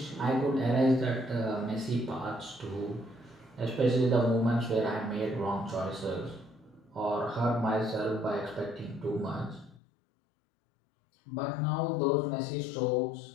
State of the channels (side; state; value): right; drops out; at 9.8 s